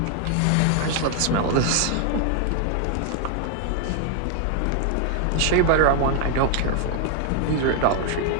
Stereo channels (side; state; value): both; different; correlation 0.00